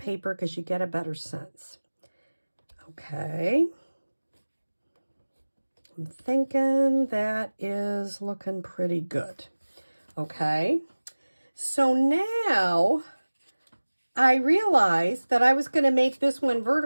because you get a better sense. Okay. I'm thinking that is looking pretty good. Okay. So now I realized that I was going to make this one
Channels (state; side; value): inverted; both; correlation -1.00